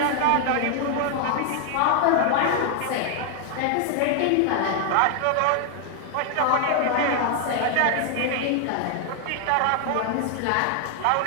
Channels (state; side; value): different; both; correlation 0.00